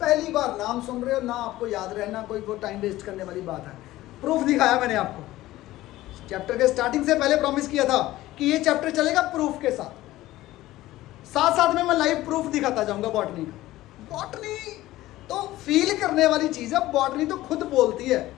बार नाम सुन रहे हो ना, आपको याद रहना कोई वो टाइम वेस्ट करने वाली बात है। प्रूफ दिखाया मैंने आपको, चैप्टर के स्टार्टिंग से पहले प्रॉमिस किया था कि ये चैप्टर चलेगा प्रूफ के साथ, साथ साथ में मैं लाइव प्रूफ दिखाता जाऊंगा बॉटनी का। बॉटनी तो फील करने वाली चीज है, बॉटनी तो खुद बोलती है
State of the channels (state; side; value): quieter; right; 16.4 dB